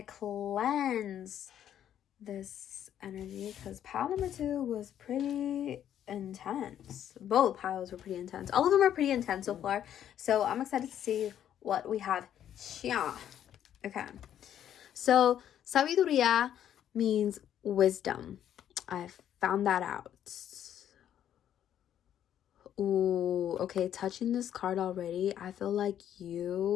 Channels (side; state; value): right; quieter; 10.4 dB